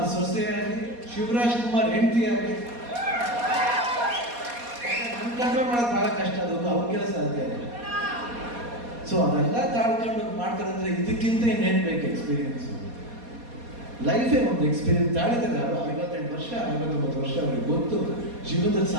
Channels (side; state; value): left; late; 4.2 ms